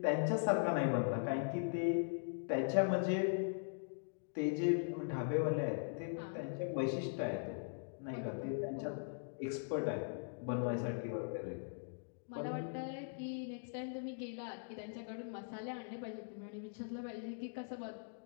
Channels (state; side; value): silent; right; digital silence